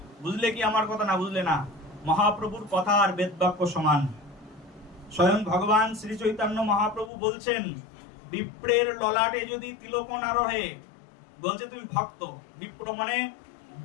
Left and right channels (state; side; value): drops out; right; at 7.1 s